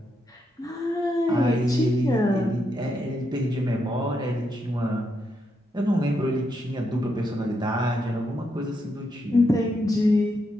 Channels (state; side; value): normal; both; correlation 0.81